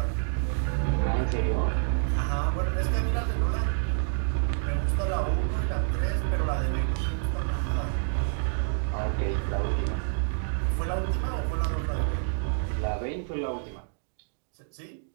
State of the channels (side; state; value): left; silent; digital silence